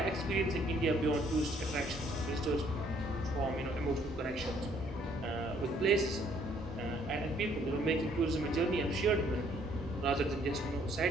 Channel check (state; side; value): normal; both; correlation 0.64